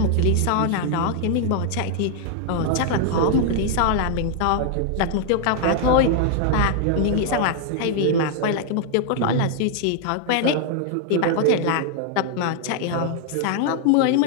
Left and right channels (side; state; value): both; different; correlation 0.00